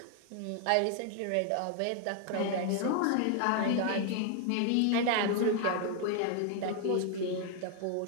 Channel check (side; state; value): both; different; correlation 0.00